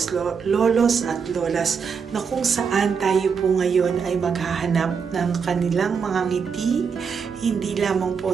at lolas na kung saan tayo po ngayon ay maghahanap ng kanilang mga ngiti, hindi lamang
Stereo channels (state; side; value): quieter; left; 6.1 dB